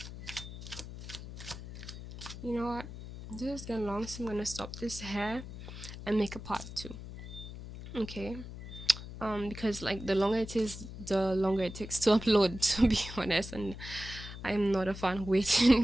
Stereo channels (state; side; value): noise; left; hum, 11 dB below the sound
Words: You know what? This is getting long, so I'm gonna stop this here and make a part two. Okay. Because like the longer it is, the longer it takes to upload, to be honest, and I'm not a fan